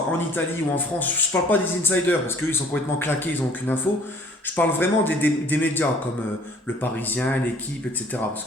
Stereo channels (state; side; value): normal; both; correlation 0.54